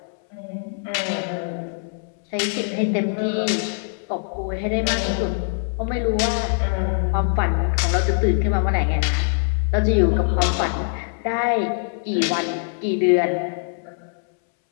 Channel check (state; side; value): silent; right; 63 dB below the other